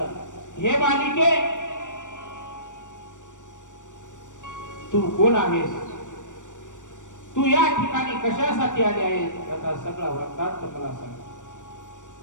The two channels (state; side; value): late; right; 0.86 ms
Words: हे बालिके, तू कोण आहेस? तू या ठिकाणी कशासाठी आले आहेस? त्याचा सगळा वृत्तांत मला सांग.